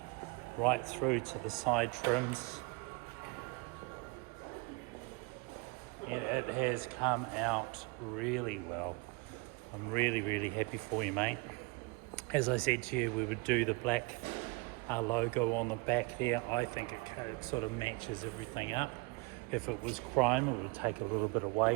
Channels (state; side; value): quieter; left; 28.0 dB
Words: right through to the side trims. And it has come out really well. I'm really happy for you, mate. As I said to you, we would do the black logo on the back there. I think it sort of matches everything up. If it was chrome, it would take a little bit